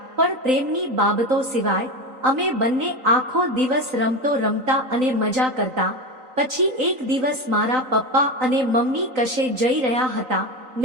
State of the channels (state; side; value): late; left; 3.9 ms